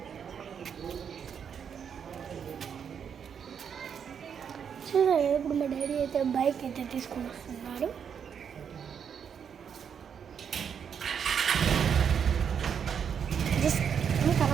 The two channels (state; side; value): quieter; left; 7.5 dB